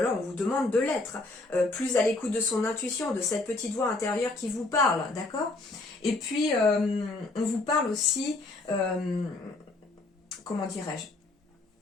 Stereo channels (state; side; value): quieter; right; 3.1 dB